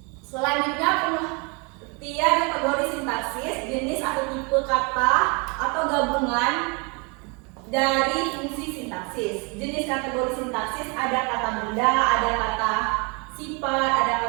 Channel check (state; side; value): quieter; left; 31.9 dB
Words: Selanjutnya pengertian kategori sintaksis, jenis atau tipe kata atau gabungan dari fungsi sintaksis. Jenis kategori sintaksis ada kata benda, ada kata sifat, ada